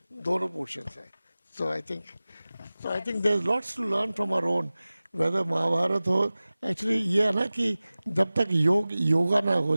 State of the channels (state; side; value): inverted; both; correlation -0.98